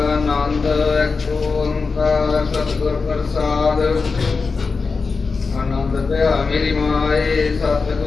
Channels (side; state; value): right; quieter; 4.5 dB